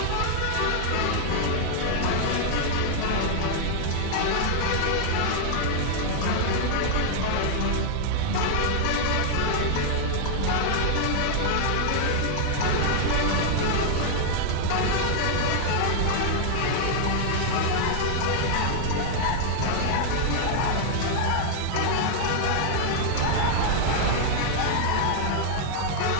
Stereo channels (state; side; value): different; both; correlation 0.00